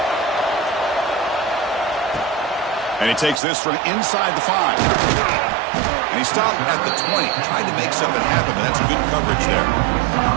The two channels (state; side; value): drops out; left; at 3.4 s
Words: And he takes this from inside the 5. And he stopped at the 20. Tried to make something happen, but that's good coverage there.